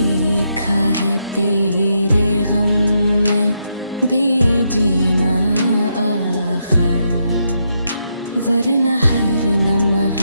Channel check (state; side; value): inverted; both; correlation -0.80